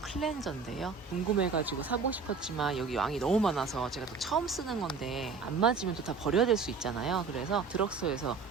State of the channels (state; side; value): quieter; left; 5.0 dB